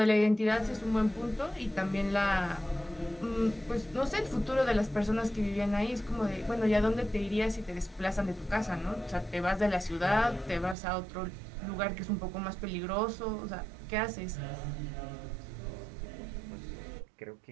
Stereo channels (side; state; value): left; drops out; at 10.8 s